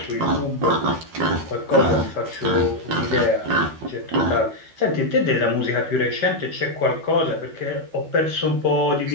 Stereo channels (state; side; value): late; left; 12 ms